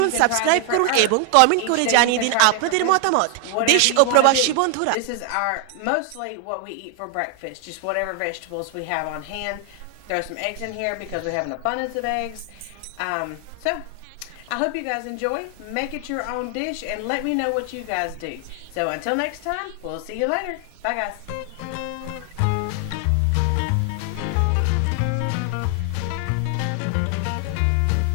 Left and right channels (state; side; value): different; both; correlation 0.00